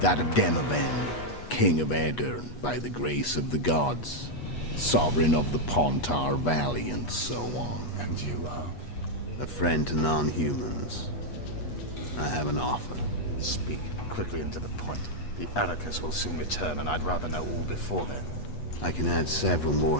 of Demavend, king of Aedirn by the grace of the gods, sovereign of the Pontar Valley, and so on. And you are? A friend to non-humans. I have an offer. Speak quickly and to the point. The Arrakis will soon return, and I'd rather know all before then. I can add several more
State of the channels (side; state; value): right; late; 8.3 ms